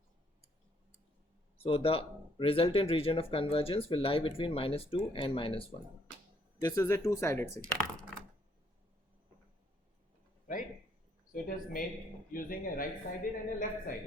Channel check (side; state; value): both; normal; correlation 0.68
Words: So the resultant region of convergence will lie between minus 2 and minus 1. This is a two-sided signal. Right? So it is made using a right-sided and a